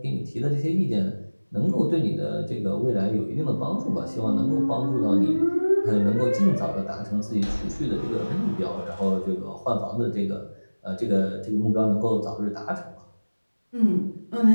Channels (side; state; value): both; inverted; correlation -1.00